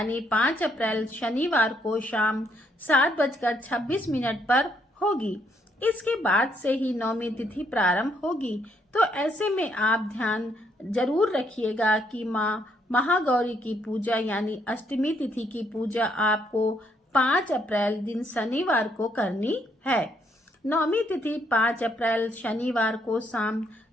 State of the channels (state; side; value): normal; both; correlation 0.72